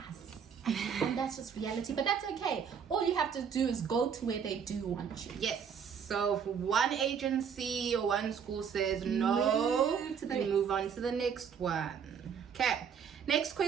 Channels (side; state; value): left; quieter; 7.2 dB